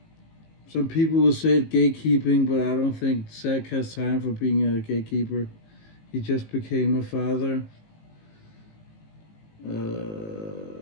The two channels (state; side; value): late; right; 18 ms